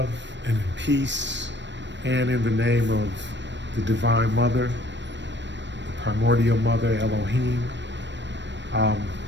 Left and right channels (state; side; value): late; left; 0.53 ms